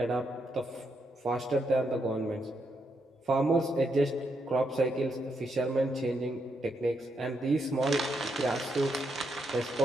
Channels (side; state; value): both; normal; correlation 0.80